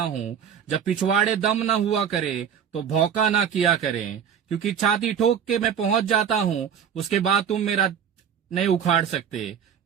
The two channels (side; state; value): left; quieter; 8.2 dB